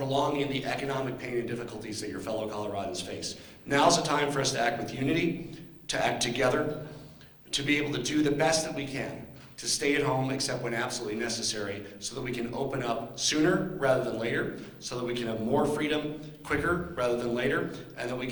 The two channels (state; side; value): identical; both; correlation 1.00